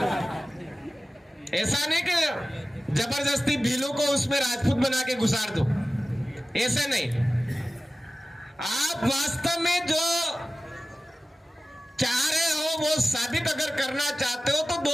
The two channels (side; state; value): both; normal; correlation 0.96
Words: ऐसा नहीं कि जबरदस्ती भीलों को उसमें राजपूत बना के घुसार दो, ऐसा नहीं। आप वास्तव में जो चाह रहे हो वो साबित अगर करना चाहते हो तो